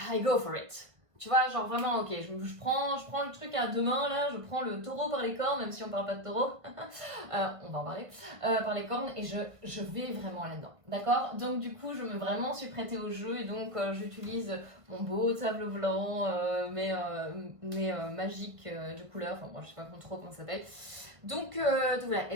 I go for it. Tu vois, genre vraiment, ok, je prends le truc à deux mains là, je prends le taureau par les cornes, même si on parle pas de taureau, on va en parler, par les cornes, et je vais vraiment là-dedans, d'accord? Donc du coup, je me vraiment suis prêtée au jeu, et donc j'utilise mon beau tableau blanc, mes magiques de couleurs, enfin moi je sais pas trop comment ça s'appelle. Donc voilà,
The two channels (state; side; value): late; left; 1.5 ms